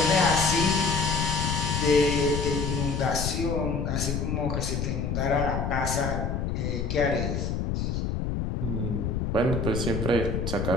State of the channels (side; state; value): left; noise; rumble, 1 dB below the sound